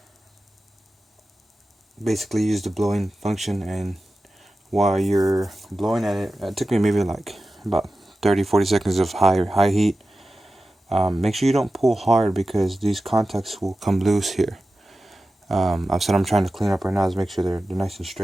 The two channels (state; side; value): normal; both; correlation 0.94